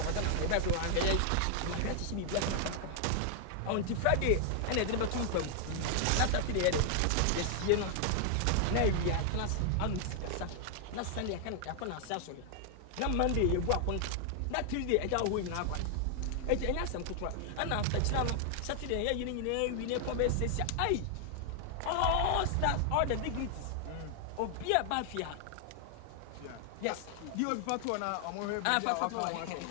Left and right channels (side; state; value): both; different; correlation 0.00